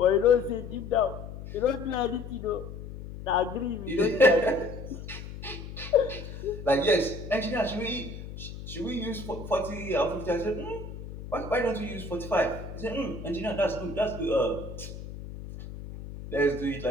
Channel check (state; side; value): noise; left; hum, 11 dB below the sound